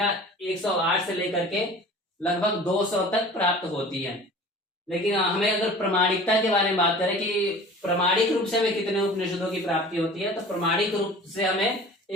108 से लेकर के लगभग 200 तक प्राप्त होती है। लेकिन हमें अगर प्रमाणिकता के बारे में बात करें कि प्रमाणिक रूप से हमें कितने उपनिषदों की प्राप्ति होती है, तो प्रमाणिक रूप से हमें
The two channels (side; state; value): both; normal; correlation 0.42